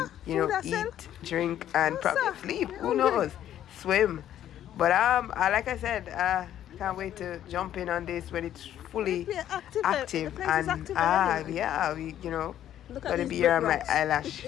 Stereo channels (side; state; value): right; quieter; 11.3 dB